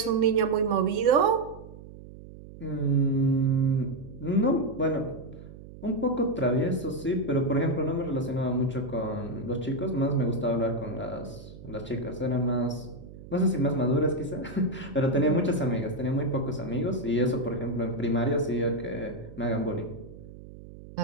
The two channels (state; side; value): noise; right; hum, 16 dB below the sound